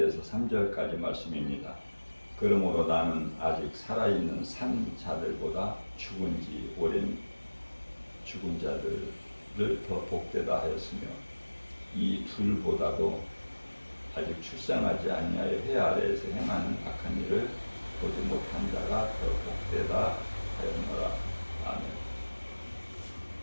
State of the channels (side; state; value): both; inverted; correlation -1.00